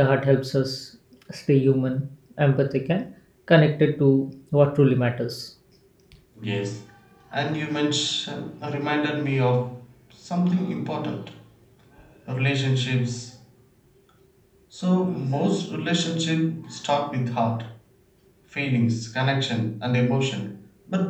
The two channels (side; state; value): both; identical; correlation 1.00